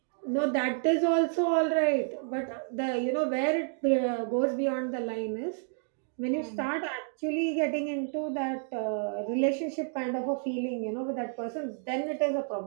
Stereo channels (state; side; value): silent; left; 58 dB below the other